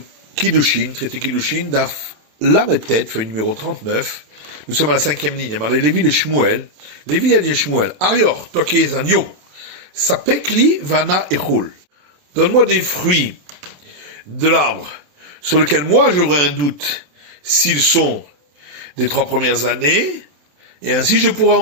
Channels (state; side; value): late; left; 27 ms